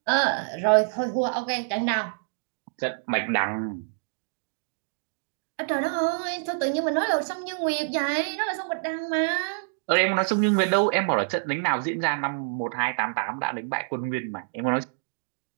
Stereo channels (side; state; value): left; silent; digital silence